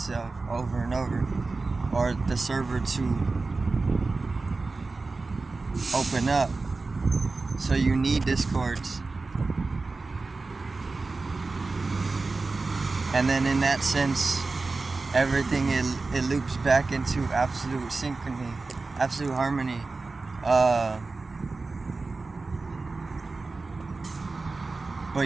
over and over, or the server to open up. So you need discords. And then in that sense, everything it loops back into absolute synchrony, absolute harmony.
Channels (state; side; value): quieter; left; 3.7 dB